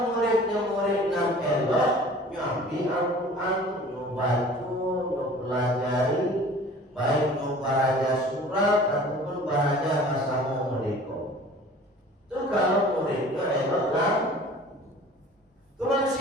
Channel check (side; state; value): both; normal; correlation 0.45